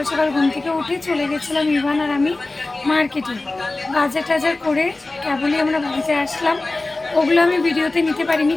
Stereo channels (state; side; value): quieter; right; 3.1 dB